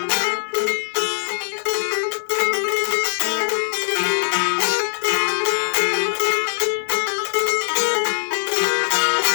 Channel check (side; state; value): right; silent; digital silence